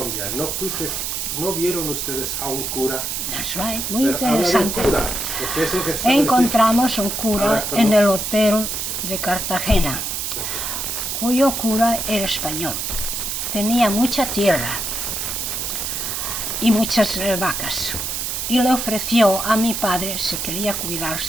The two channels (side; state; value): right; noise; hiss, 3 dB below the sound